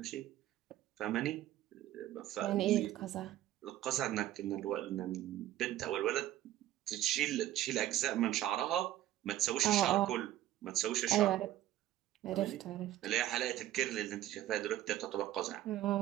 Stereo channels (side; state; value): left; quieter; 13.6 dB